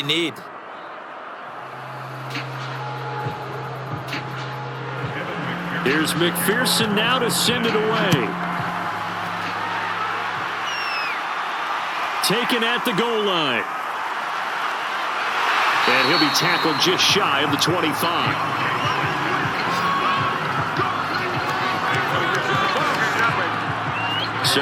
need. Here's McPherson now to send it away. Taken at the goal line. And he'll be tackled just shy of the 25.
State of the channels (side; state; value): both; identical; correlation 1.00